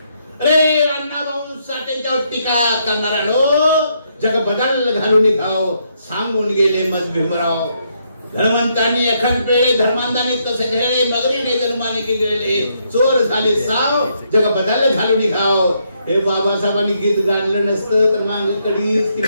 अरे अण्णाभाऊ साठेंच्यावर टीका करणारा जग बदल घालून घाव सांगून गेले मत भीमराव. धर्मंतांनी एखाद पेळे धर्मांतांनी तसे घेळे, मगरीने धर्माने केले चोर झाले साव, जग बदल घालून घाव. हे बाबासाहेबांनी गीत गाणलं नसतं तर माग कडीच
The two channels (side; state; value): both; inverted; correlation -0.75